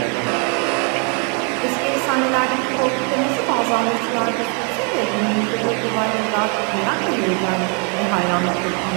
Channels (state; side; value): quieter; left; 37.8 dB